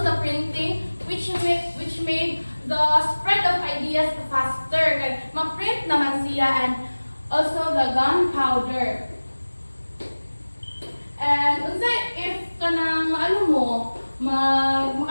the printing, which made the spread of ideas faster. Kay ma-print naman siya, and also the gunpowder. And unsay if kanang maano mo,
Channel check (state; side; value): inverted; both; correlation -1.00